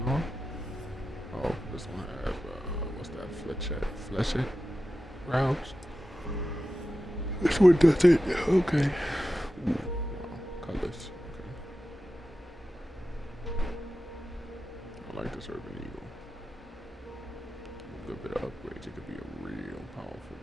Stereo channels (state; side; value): normal; both; correlation 0.92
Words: Oh, this one has, what's that, fletchet rounds? This one does it. Okay. Ooh, wow, colors. Okay. I like this Urban Eagle. A bit of upgrades, it could be a real powerful